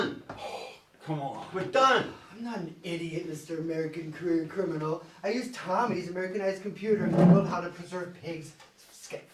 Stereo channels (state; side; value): identical; both; correlation 1.00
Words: Come on. We're done. I'm not an idiot, Mr. American career criminal. I used Tommy's Americanized computer and Googled how to preserve pigs'